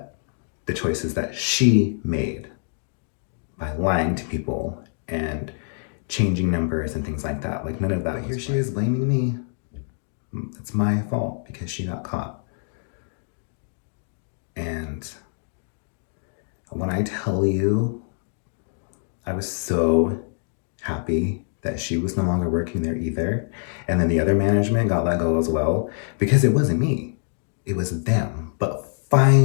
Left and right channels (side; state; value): right; silent; 62 dB below the other